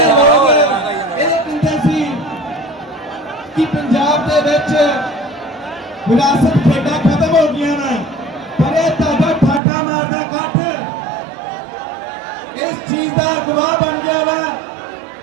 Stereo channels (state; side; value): drops out; left; at 9.6 s